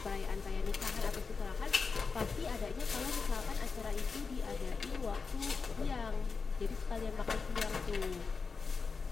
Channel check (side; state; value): right; quieter; 4.9 dB